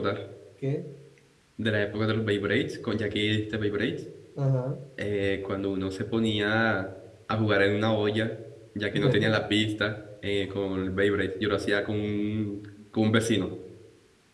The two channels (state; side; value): identical; both; correlation 1.00